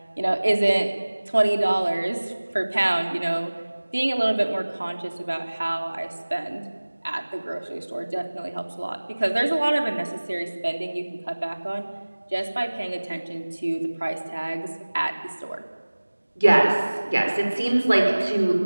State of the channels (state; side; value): inverted; both; correlation -1.00